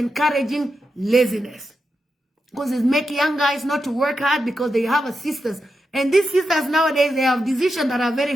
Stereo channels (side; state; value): both; normal; correlation 0.87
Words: laziness. Because it's making young guys not to work hard because they have a sisters. And these sisters nowadays, they have decisions that are